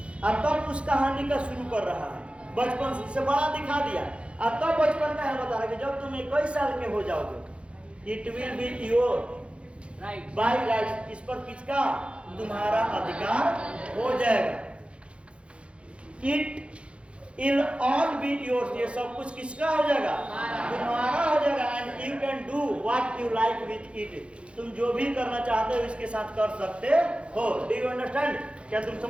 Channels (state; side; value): late; left; 0.059 ms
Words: और तब उस कहानी का शुरू कर रहा है, बचपन से बड़ा दिखा दिया, और तब बचपन का है बता रहा है कि जब तुम 21 साल के हो जाओगे, it will be your by right, इस पर किसका, तुम्हारा अधिकार हो जाएगा। It'll all be yours, ये सब कुछ किसका हो जाएगा, तुम्हारा हो जाएगा। And you can do what you like with it, तुम जो भी करना चाहते हो इसके साथ कर सकते हो। डू यू अंडरस्टैंड, क्या तुम